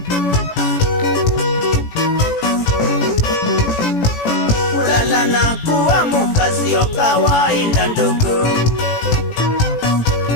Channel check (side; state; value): right; late; 18 ms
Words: Kulala na kuamka sio kawaida ndugu.